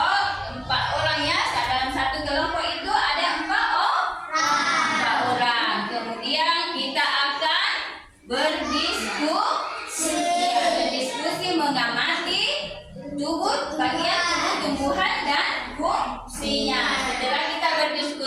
4 orang ya. Dalam satu kelompok itu ada 4 orang. Kemudian kita akan berdiskusi mengamati bagian tubuh tumbuhan dan fungsinya. Setelah kita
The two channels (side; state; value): both; identical; correlation 1.00